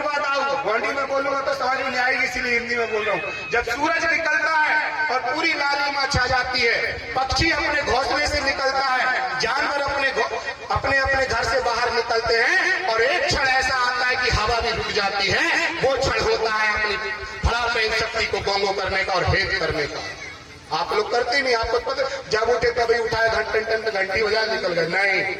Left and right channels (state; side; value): identical; both; correlation 1.00